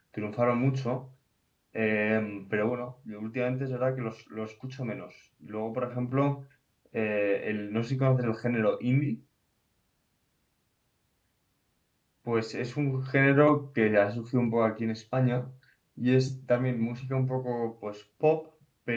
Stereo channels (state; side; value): identical; both; correlation 1.00